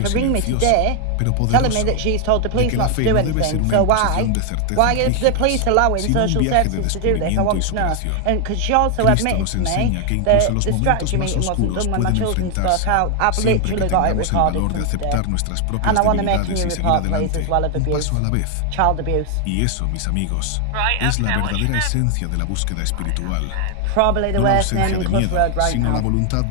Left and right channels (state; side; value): different; both; correlation 0.00